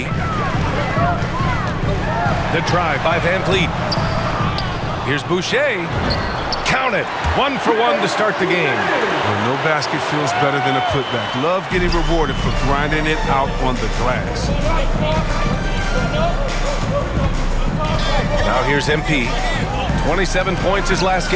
The drive by Van Vliet. Here's Boucher. Count it. 1 for 1 to start the game. Well, no basket feels better than a putback. Love getting rewarded for grinding it out on the glass. Now here's MP. 27 points his last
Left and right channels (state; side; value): identical; both; correlation 1.00